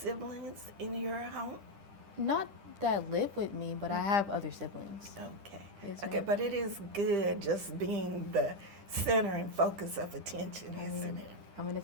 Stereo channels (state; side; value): late; left; 10 ms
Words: in your home? Not that live with me, but I have other siblings. Okay. Yes, Okay, ma'am. but it is good just being the center and focus of attention, isn't it? I'm an